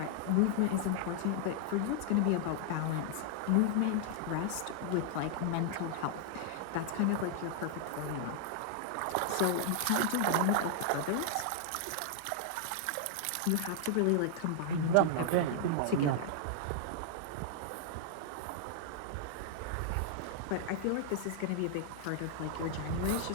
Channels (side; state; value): both; different; correlation -0.01